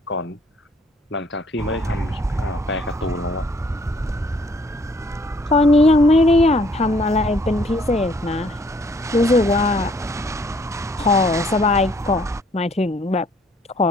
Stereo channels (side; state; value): both; normal; correlation 0.62